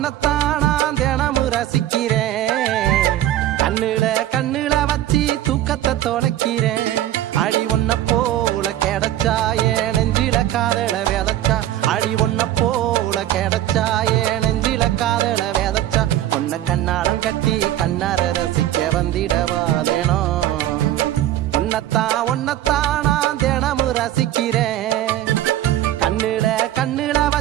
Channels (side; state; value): left; quieter; 13.2 dB